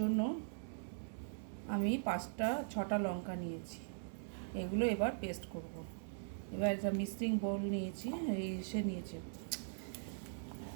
আমি 5-6টা লঙ্কা নিয়েছি। এগুলো এবার পেস্ট করব। এবার একটা মিক্সিং বোল নিয়েছি, নিয়েছি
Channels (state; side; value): silent; left; digital silence